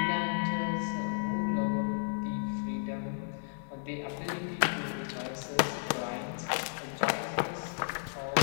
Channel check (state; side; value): silent; right; digital silence